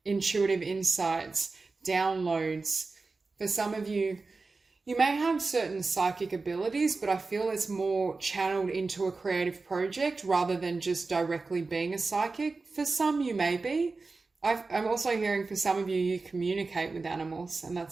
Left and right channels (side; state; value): left; quieter; 3.9 dB